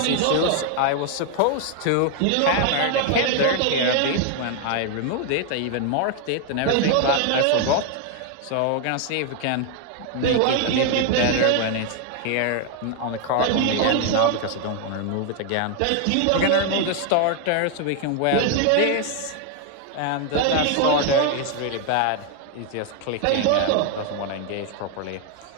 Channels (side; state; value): both; different; correlation 0.01